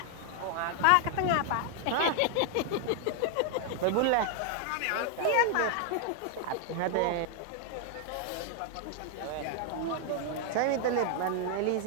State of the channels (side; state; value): both; different; correlation 0.00